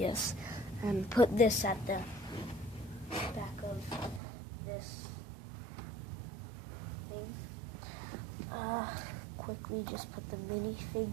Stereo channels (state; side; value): drops out; left; at 4.2 s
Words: And put this at the back of this thing. Quickly just put the